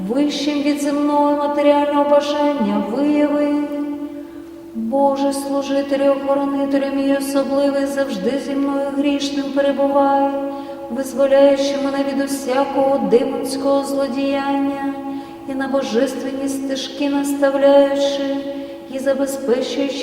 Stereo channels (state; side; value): identical; both; correlation 1.00